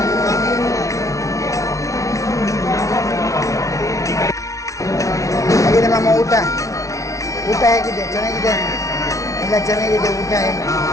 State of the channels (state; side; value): late; right; 0.16 ms